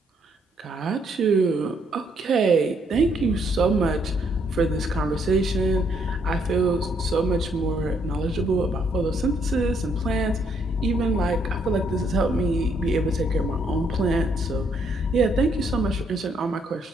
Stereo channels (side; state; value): both; normal; correlation 0.71